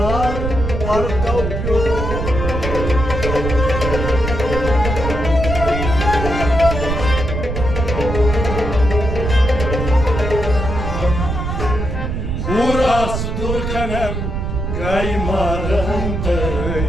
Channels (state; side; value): noise; right; rumble, 3 dB below the sound